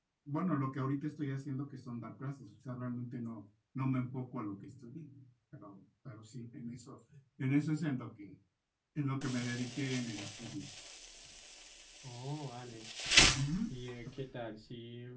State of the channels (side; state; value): both; identical; correlation 1.00